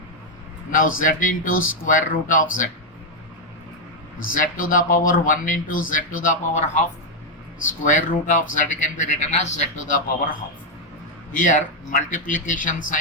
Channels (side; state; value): both; normal; correlation 0.00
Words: Now z into square root of z, z to the power 1 into z to the power half, square root of z can be written as z to the power half. Here multiplication